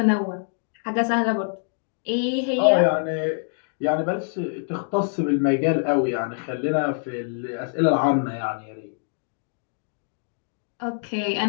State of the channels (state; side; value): silent; right; 62 dB below the other